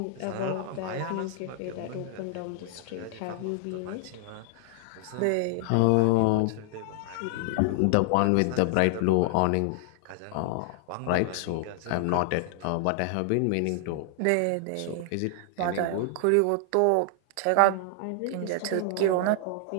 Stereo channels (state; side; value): different; both; correlation 0.00